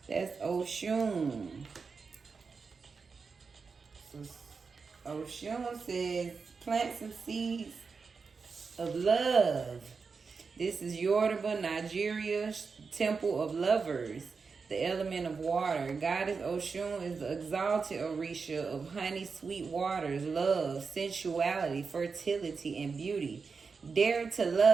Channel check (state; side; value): quieter; left; 5.0 dB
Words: That's Oshun. So Oshun says plant some seeds of love. This is Yoruba, Nigeria, temple of lovers, the element of water. Goddess Oshun is the exalted Orisha of honey, sweet waters, love, sensuality, fertility, and beauty. Dare to